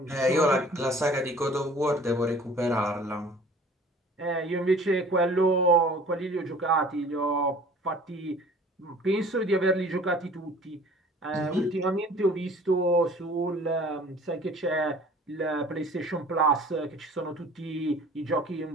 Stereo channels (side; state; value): both; normal; correlation 0.49